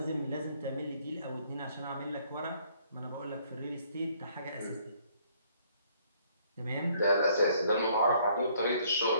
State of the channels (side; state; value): both; inverted; correlation -0.64